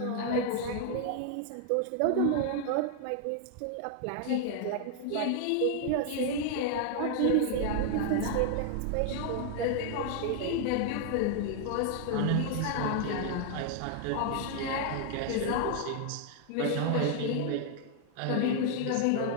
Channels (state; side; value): different; both; correlation 0.00